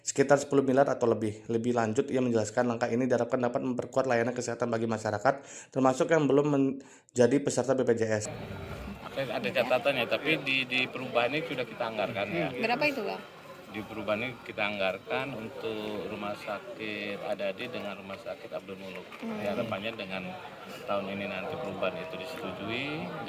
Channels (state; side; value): identical; both; correlation 1.00